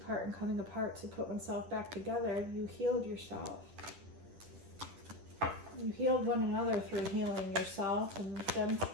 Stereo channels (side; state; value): left; late; 10 ms